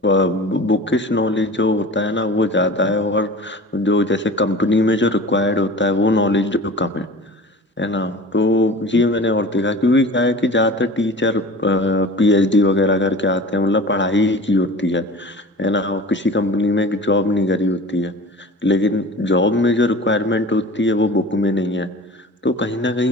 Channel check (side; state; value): both; normal; correlation 0.38